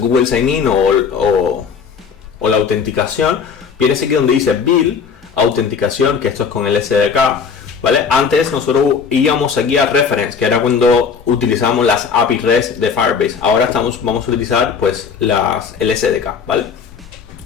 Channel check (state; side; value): quieter; right; 6.2 dB